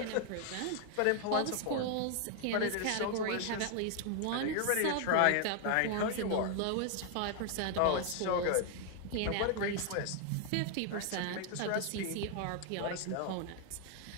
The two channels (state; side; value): different; both; correlation 0.00